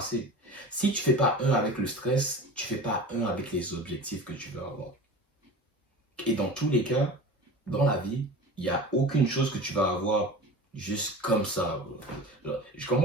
Si tu fais pas un avec le stress, tu fais pas un avec les objectifs que tu veux avoir. Et dans tous les cas, dans la vie, il n'y a aucune chose que tu vas avoir juste comme ça. Je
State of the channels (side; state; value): both; normal; correlation 0.35